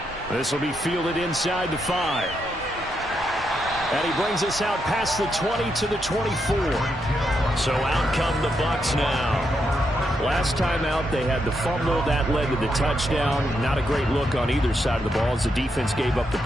This will be fielded inside the 5. And he brings us out past the 20 to the 24. So out come the Bucs now. Last time out, they had the fumble. That led to the touchdown. Not a great look on either side of the ball as the defense gave up the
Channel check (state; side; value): normal; both; correlation 0.81